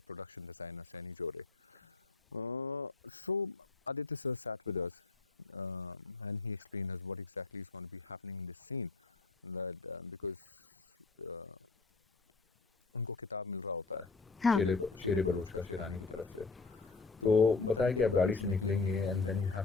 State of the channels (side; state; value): right; quieter; 4.1 dB